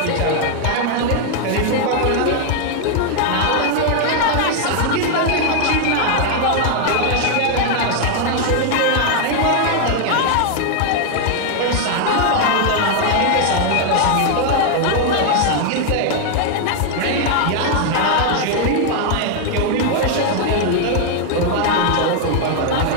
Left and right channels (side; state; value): both; different; correlation 0.00